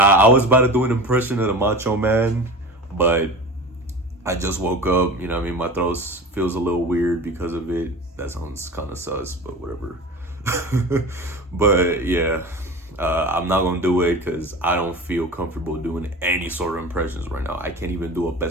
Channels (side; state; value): both; normal; correlation 0.34